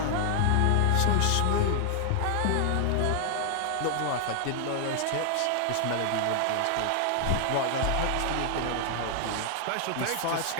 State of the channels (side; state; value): both; different; correlation 0.00